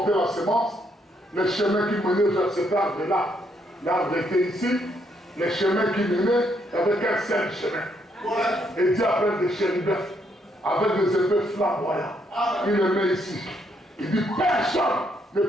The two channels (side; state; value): both; normal; correlation 0.74